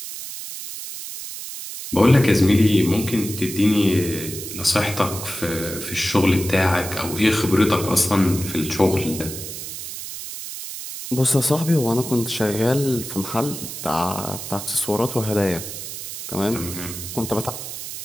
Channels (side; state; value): right; noise; hiss, 9 dB below the sound